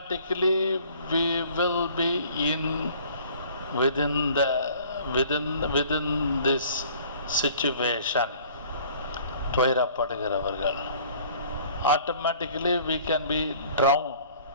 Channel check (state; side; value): inverted; both; correlation -0.52